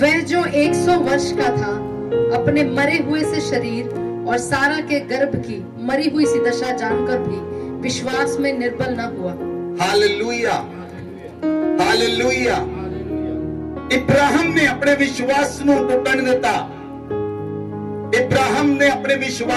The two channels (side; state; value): both; identical; correlation 1.00